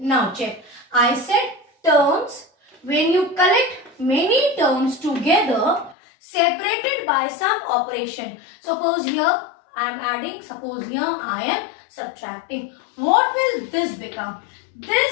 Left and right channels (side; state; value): right; drops out; at 6.0 s